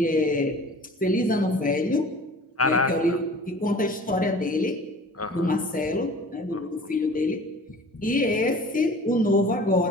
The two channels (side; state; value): both; normal; correlation 0.44